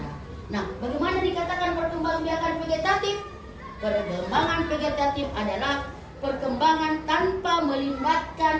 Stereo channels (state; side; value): identical; both; correlation 1.00